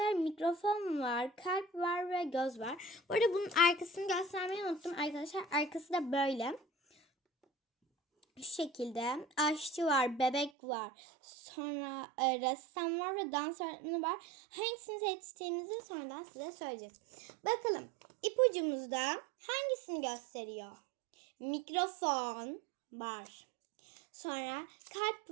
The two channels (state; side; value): drops out; left; at 10.5 s